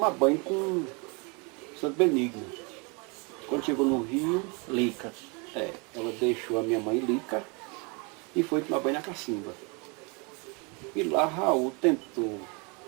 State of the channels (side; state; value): left; quieter; 31.6 dB